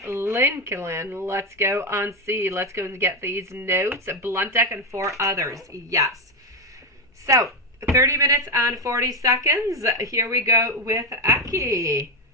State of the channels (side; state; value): both; normal; correlation 0.09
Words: Lincoln. Let's go on see. Let's go and get these notes. Blunt deck and 4 others. Yes. So, 30 minutes and 40 seconds. Here we go with Aki.